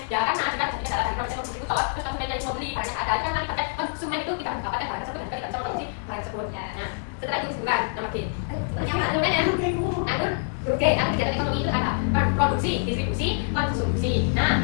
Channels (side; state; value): right; silent; digital silence